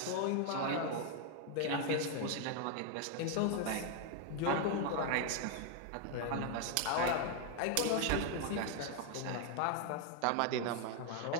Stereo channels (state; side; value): different; both; correlation 0.01